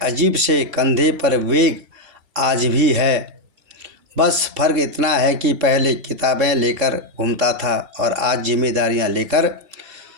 से कंधे पर वेग आज भी है। बस फ़र्क इतना है कि पहले किताबें लेकर घूमता था और आज जिम्मेदारियां लेकर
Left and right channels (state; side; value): late; left; 3.7 ms